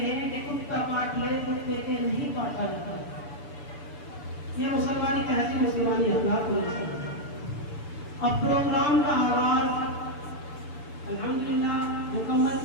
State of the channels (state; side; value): late; right; 6.9 ms